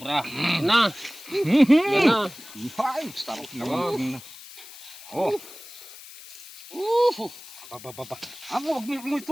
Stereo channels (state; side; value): noise; left; hiss, 17 dB below the sound